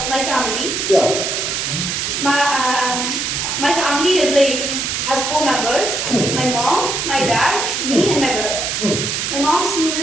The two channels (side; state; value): right; noise; hiss, 1 dB below the sound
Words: my family. Yeah. My family is like has 4 members. My mom, my dad, me, and my brother. My mom's name